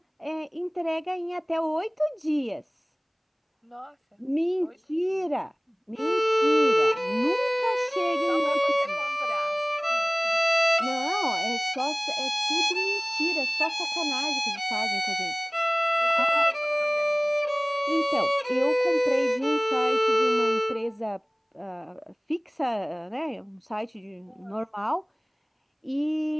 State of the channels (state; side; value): identical; both; correlation 1.00